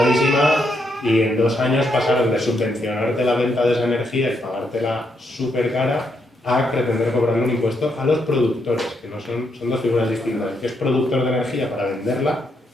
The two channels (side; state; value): both; normal; correlation 0.78